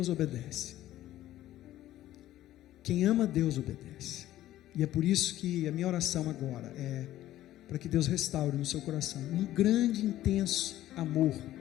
obedece. Quem ama Deus obedece. E é por isso que a minha oração agora é para que Deus restaure no seu coração um grande, intenso amor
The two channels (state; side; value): quieter; right; 14.0 dB